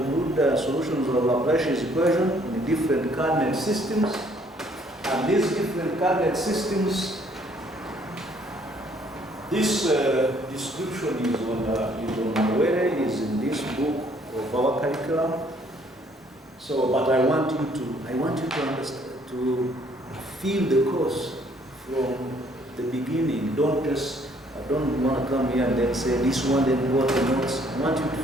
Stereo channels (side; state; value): both; normal; correlation 0.63